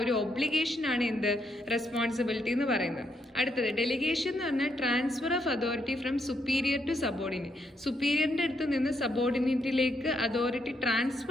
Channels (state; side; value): normal; both; correlation 0.76